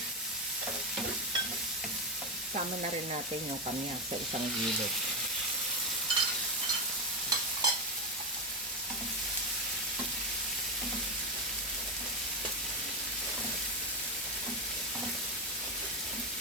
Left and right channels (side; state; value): both; normal; correlation 0.10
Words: Sama na rin natin yung kamyas sa isang gilid.